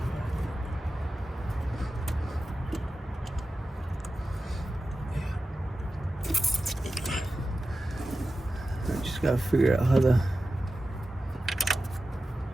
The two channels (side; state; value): both; normal; correlation 0.93